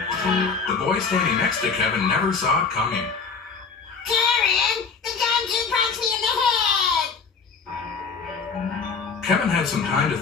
The boy standing next to Kevin never saw it coming. Karen, the gumshoe punched me in the head! Kevin had some time to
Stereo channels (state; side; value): quieter; right; 5.2 dB